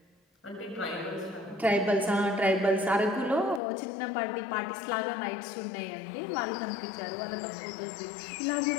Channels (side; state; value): right; drops out; at 3.6 s